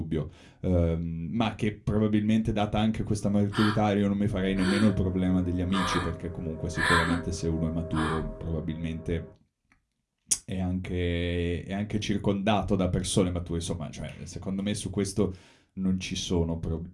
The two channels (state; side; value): identical; both; correlation 1.00